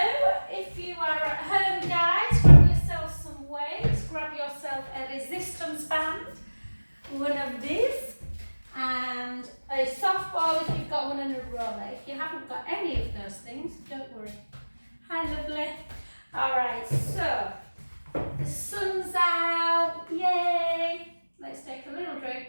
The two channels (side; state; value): both; inverted; correlation -1.00